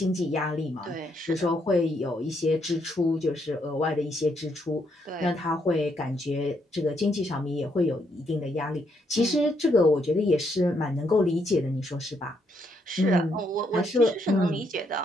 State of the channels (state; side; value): normal; both; correlation 0.75